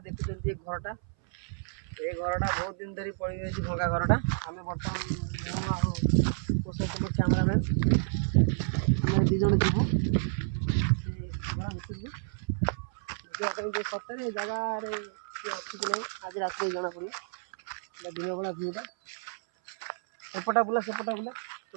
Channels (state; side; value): silent; left; 58 dB below the other